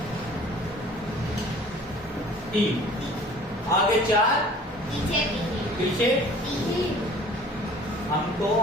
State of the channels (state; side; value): normal; both; correlation 0.49